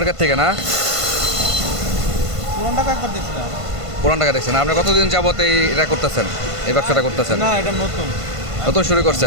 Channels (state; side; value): late; left; 1.5 ms